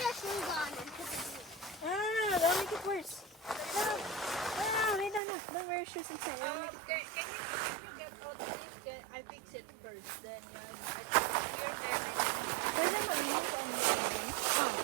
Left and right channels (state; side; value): drops out; left; at 5.2 s